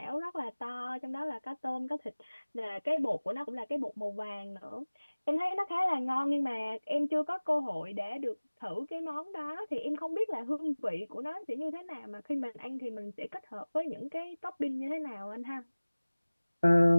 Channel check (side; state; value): both; inverted; correlation -1.00